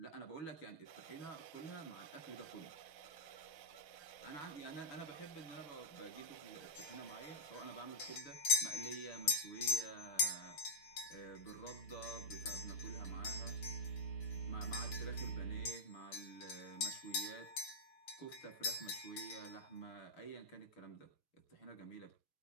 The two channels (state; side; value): late; right; 6.3 ms